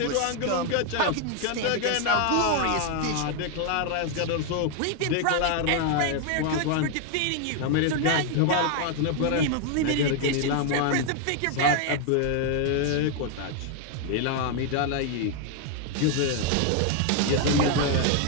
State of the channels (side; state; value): both; different; correlation 0.00